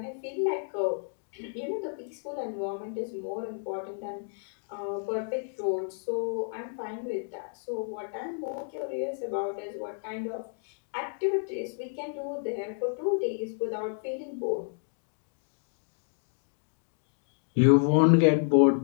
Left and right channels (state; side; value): silent; right; digital silence